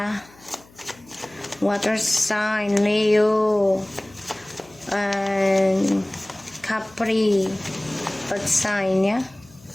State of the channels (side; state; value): left; noise; hum, 26 dB below the sound